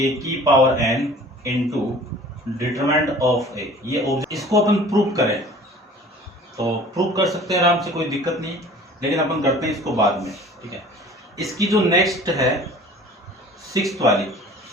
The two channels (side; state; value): both; normal; correlation 0.46